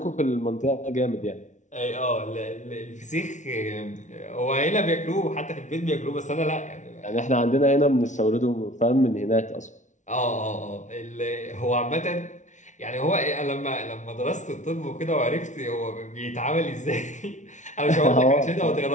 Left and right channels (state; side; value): late; right; 0.36 ms